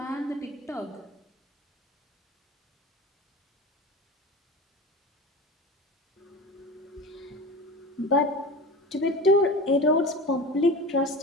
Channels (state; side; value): normal; both; correlation 0.31